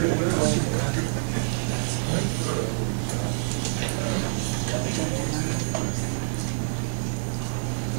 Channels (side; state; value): left; silent; digital silence